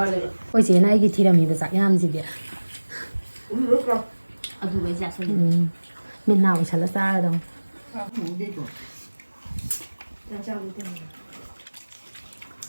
Ôi chị này cái thi là mình phải dạy làm gì vậy? Ở dù bây giờ sao? Mình nào chả là xa đâu.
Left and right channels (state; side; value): inverted; both; correlation -1.00